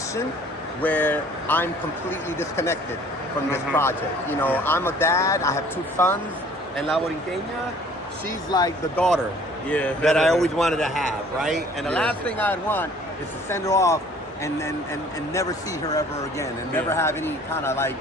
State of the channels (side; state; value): both; normal; correlation 0.53